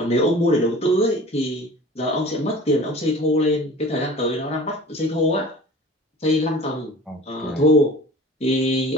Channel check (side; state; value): both; normal; correlation 0.42